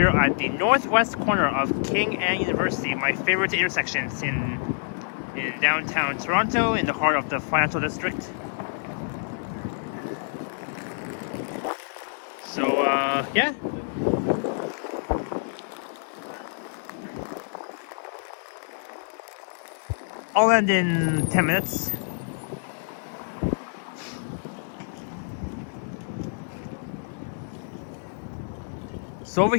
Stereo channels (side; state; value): right; silent; 60 dB below the other